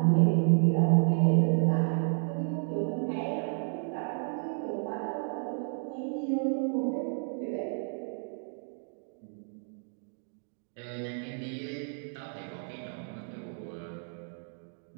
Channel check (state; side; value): silent; left; 57 dB below the other